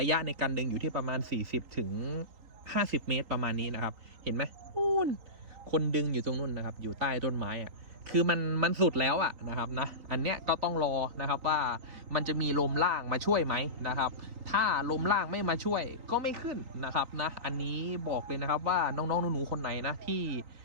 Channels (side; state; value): left; late; 3.7 ms